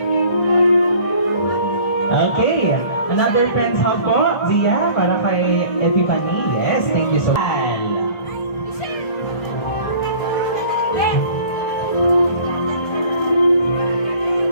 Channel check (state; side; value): late; right; 1.5 ms